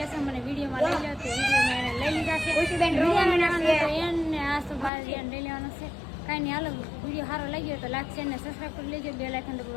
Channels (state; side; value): drops out; right; at 4.9 s